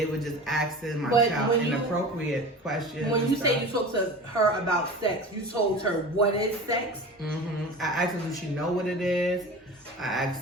were just asking my child inappropriate questions. When you say you talked to her about sex, you told her what is sex? Mm-hmm. I asked her, does she know what it is? I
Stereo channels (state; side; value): normal; both; correlation 0.35